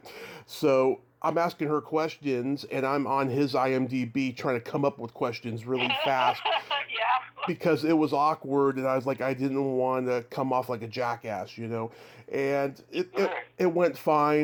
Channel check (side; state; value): both; identical; correlation 1.00